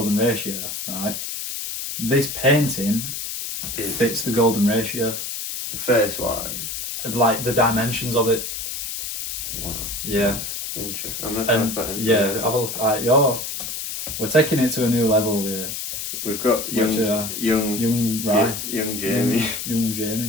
ratio, right? This painting fits the golden ratio. Face wise. Like the dimensions of it. Wow. Yeah. That's interesting. I'm not talking about it. Yeah, have a look at we're taking it to a new level here. We've got young Jamie. Young Jamie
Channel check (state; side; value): noise; left; hiss, 5 dB below the sound